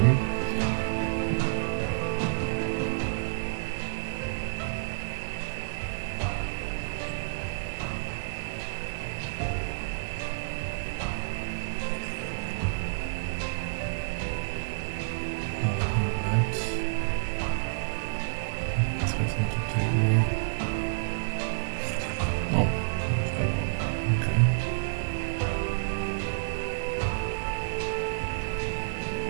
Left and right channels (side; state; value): left; silent; digital silence